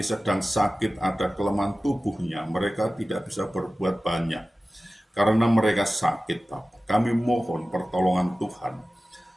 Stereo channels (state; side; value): normal; both; correlation 0.96